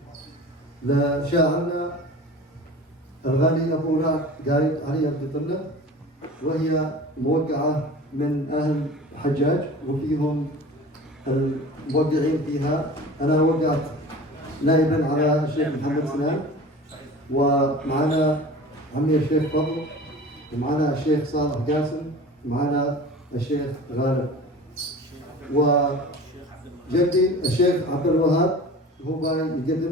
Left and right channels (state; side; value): normal; both; correlation 0.39